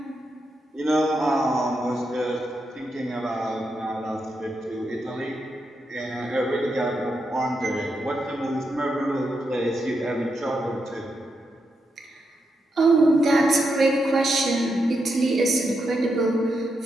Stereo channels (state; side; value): normal; both; correlation 0.84